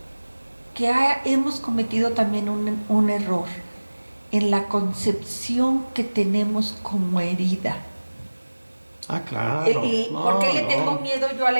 que hemos cometido también un error en la concepción que tenemos como herida. Ah, claro. ¿Por qué le tengo miedo yo a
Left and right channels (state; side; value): inverted; both; correlation -1.00